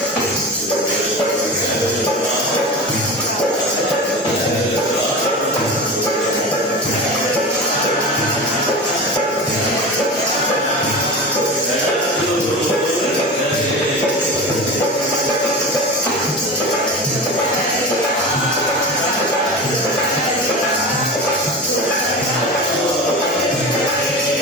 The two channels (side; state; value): both; normal; correlation 0.28